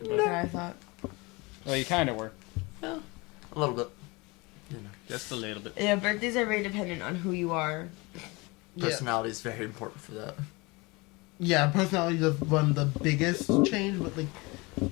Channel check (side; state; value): right; quieter; 25.3 dB